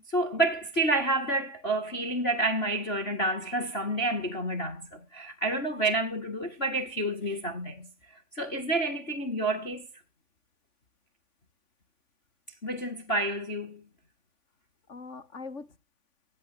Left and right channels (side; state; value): right; late; 3.5 ms